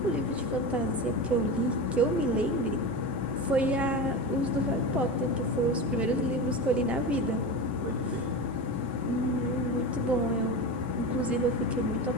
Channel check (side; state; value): both; normal; correlation 0.24